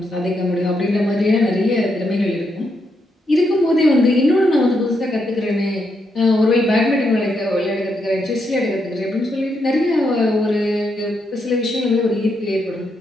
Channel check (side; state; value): both; normal; correlation 0.80